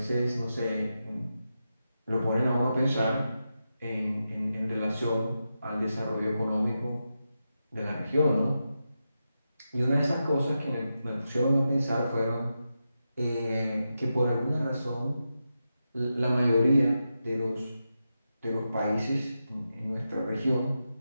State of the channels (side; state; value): both; inverted; correlation -0.89